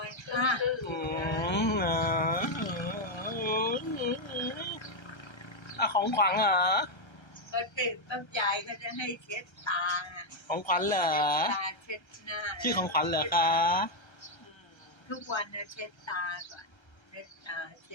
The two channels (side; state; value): right; late; 1.3 ms